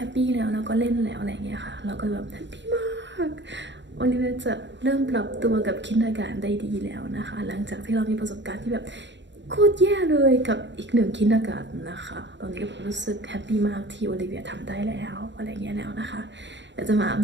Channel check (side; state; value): left; late; 0.52 ms